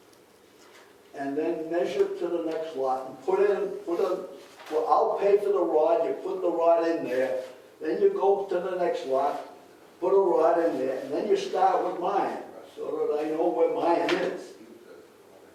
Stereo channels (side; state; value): both; identical; correlation 1.00